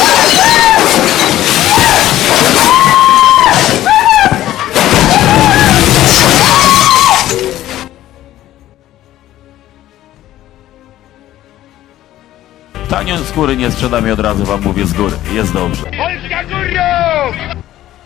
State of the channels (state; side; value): quieter; right; 13.9 dB